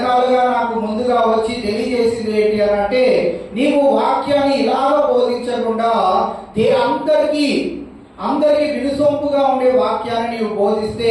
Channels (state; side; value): identical; both; correlation 1.00